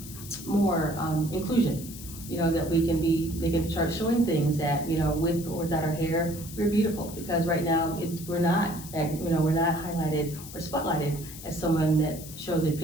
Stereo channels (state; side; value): noise; left; hiss, 14 dB below the sound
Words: more inclusion. You know, that they can start showing things that, you know, with or without our hair, we're beautiful. Because right now, we're not highlighted or spotlighted as someone that shows the